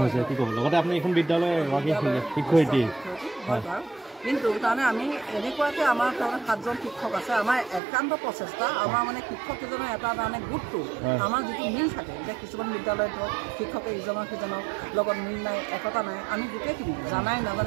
হৈছে কি ক'ব লগতে আপুনি এইখন বিদ্যালয়ৰ এগৰাকী শিক্ষয়িত্ৰী হয় কিন্তু তাৰমানে আমি এনেকুৱাকৈ আমাৰ তাৰমানে 7জন শিক্ষক আছে আমাৰ একান্ত প্ৰচেষ্টা আমাৰ মানে শিক্ষককেইজনৰ এটা তাৰমানে গোটটো আমাৰ যিটো মিল থাকে এতিয়া কিছুমান বিদ্যালয়ত ধৰক শিক্ষকে ইজনৰ সিজনৰ লগত মিল নাই একতা নাই আমি গোটেইখিনি জানাই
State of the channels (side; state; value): left; drops out; at 7.8 s